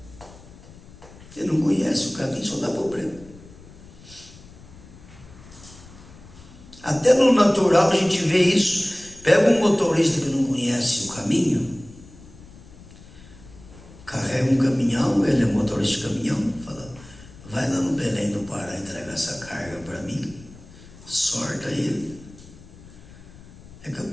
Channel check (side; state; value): left; noise; rumble, 20 dB below the sound